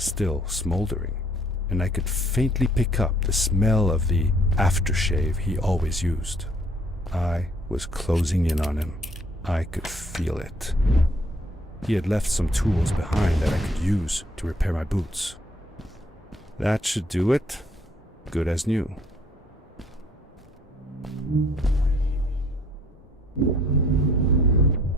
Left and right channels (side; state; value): both; normal; correlation 0.62